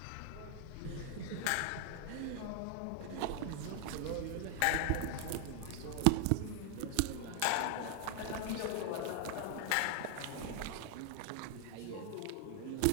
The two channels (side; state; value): both; different; correlation 0.00